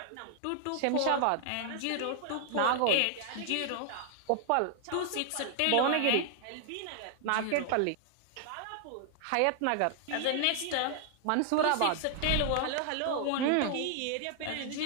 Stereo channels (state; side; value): different; both; correlation -0.01